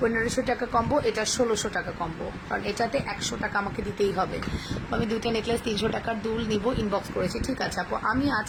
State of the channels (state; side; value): identical; both; correlation 1.00